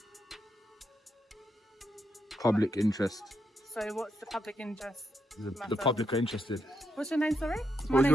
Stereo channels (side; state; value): both; normal; correlation 0.80